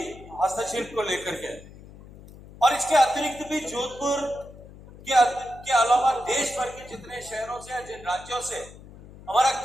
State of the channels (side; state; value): left; noise; hum, 19 dB below the sound